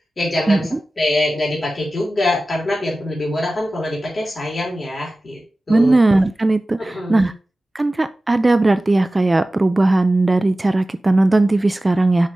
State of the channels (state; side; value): normal; both; correlation 0.96